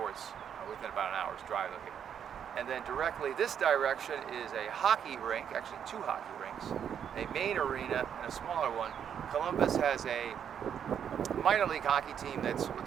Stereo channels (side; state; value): left; quieter; 8.4 dB